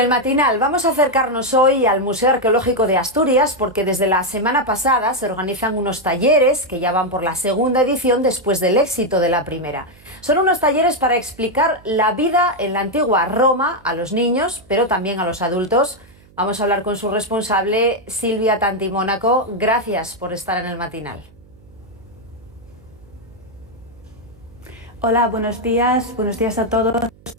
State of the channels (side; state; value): right; noise; hum, 27 dB below the sound